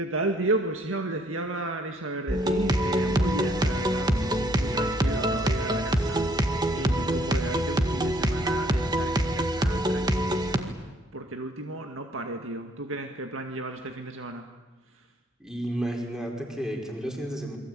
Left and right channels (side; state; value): both; normal; correlation 0.65